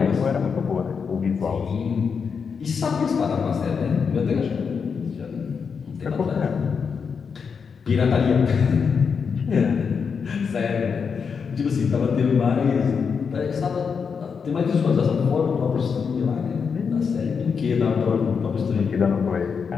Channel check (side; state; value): right; quieter; 6.0 dB